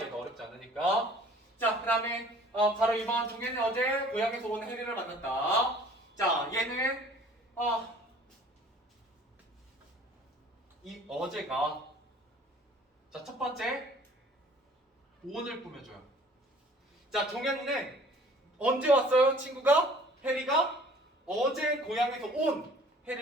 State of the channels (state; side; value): normal; both; correlation 0.52